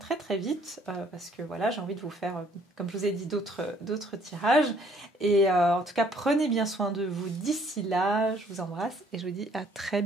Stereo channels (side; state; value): both; normal; correlation 0.62